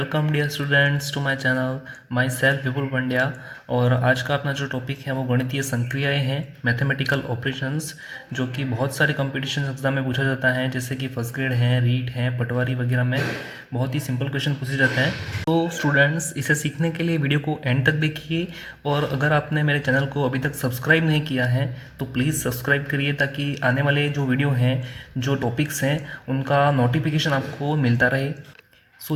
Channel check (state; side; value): identical; both; correlation 1.00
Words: dear students to my channel. Myself Vipul Pandya. और आज का अपना जो टॉपिक है वो गणितीय संक्रियाएं हैं, मैथमेटिकल ऑपरेशंस, जो कि बहुत सारे कंपटीशन एग्जाम में पूछा जाता है, जैसे कि फर्स्ट ग्रेड है, रीट है, पटवारी वगैरह में बहुत ही सिंपल क्वेश्चन पूछे जाते हैं। तो स्टूडेंट्स, इसे सीखने के लिए वीडियो को एंड तक देखिए, और अगर आपने मेरे चैनल को अभी तक सब्सक्राइब नहीं किया है तो प्लीज़ सब्सक्राइब करिए, ताकि आने वाले जो वीडियो हैं, जो टॉपिक्स हैं, उनका नोटिफिकेशन आपको मिलता रहे।